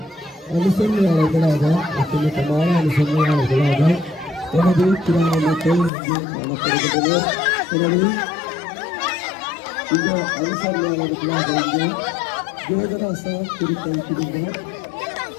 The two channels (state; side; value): drops out; right; at 5.9 s